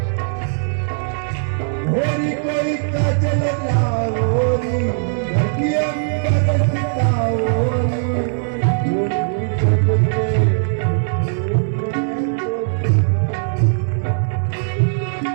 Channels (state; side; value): silent; left; digital silence